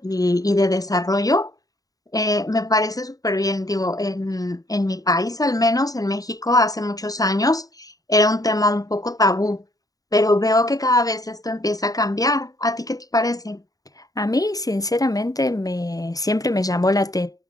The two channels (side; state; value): right; late; 0.18 ms